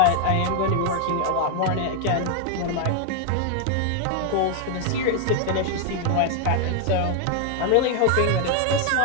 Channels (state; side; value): different; both; correlation 0.00